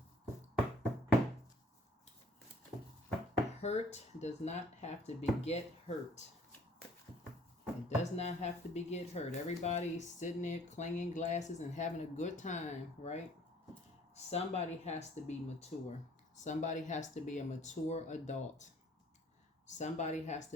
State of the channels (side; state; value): both; normal; correlation 0.56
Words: hurt does not have to beget hurt. It does not have to beget hurt. Everybody's sitting there clanging glasses and having a good time, right? Somebody has to be mature. Somebody has to be a mature adult. Somebody has to